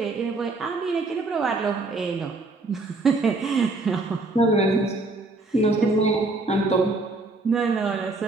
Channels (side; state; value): left; quieter; 3.2 dB